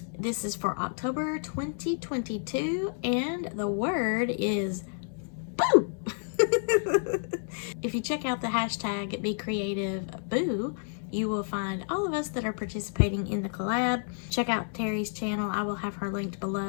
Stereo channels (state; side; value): silent; right; 58 dB below the other